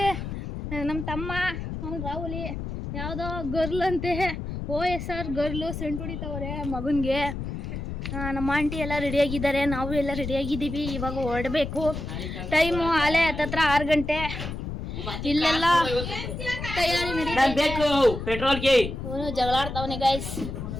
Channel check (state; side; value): noise; left; rumble, 6 dB below the sound